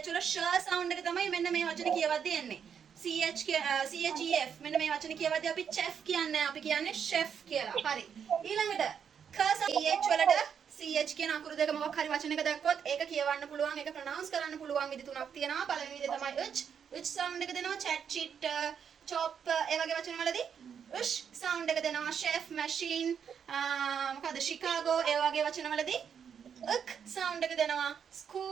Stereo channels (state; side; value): quieter; left; 7.5 dB